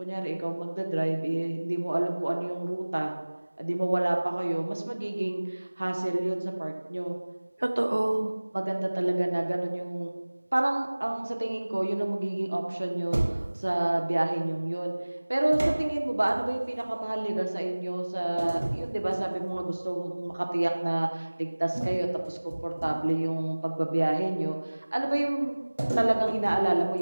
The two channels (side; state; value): both; inverted; correlation -1.00